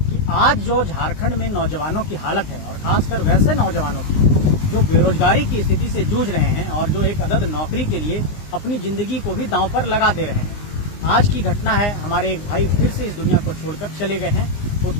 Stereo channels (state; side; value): late; right; 20 ms